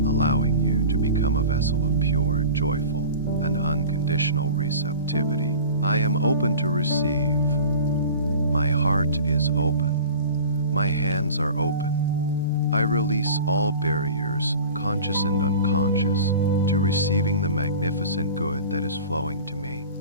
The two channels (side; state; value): both; inverted; correlation -0.39